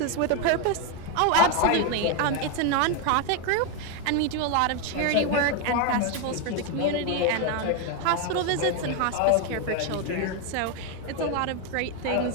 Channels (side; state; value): both; different; correlation 0.02